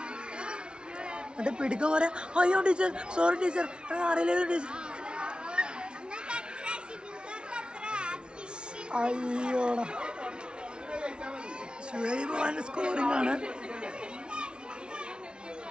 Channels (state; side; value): late; left; 0.056 ms